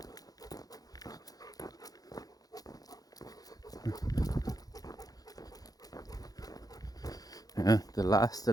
Yeah, the last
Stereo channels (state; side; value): late; right; 0.18 ms